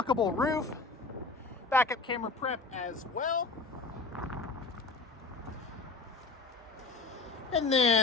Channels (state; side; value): quieter; right; 3.8 dB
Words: roof. Backup camera prep as well. And